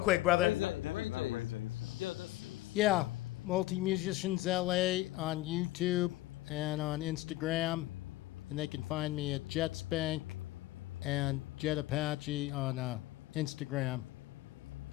brother. Yeah, Multi-Musicians LA on YouTube and on Instagram. And they can find me at Jetspank and Jet Apache on Instagram.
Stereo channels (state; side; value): quieter; right; 17.3 dB